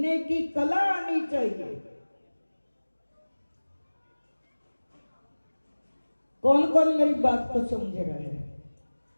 की कला आनी चाहिए। कौन कौन मेरी बात को समझ रहा है?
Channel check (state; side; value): inverted; both; correlation -1.00